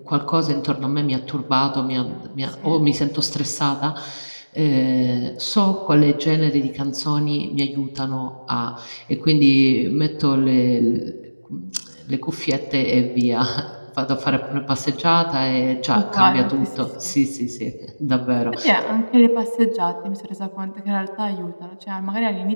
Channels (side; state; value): both; inverted; correlation -1.00